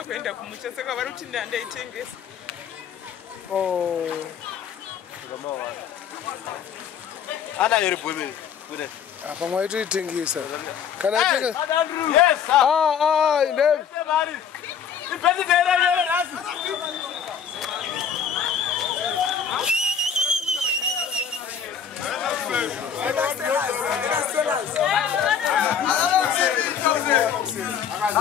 oh. I'm waiting to you, sir. Can I take it? Yes, sir. Oh, no,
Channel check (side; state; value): right; quieter; 7.6 dB